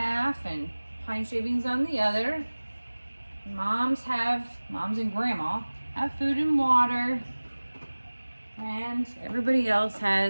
and pine shavings on the other. Moms and Grandma have food and water. And everybody else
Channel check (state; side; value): inverted; both; correlation -1.00